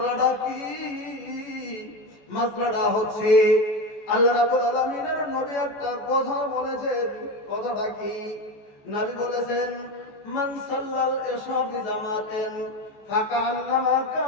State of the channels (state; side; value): late; right; 14 ms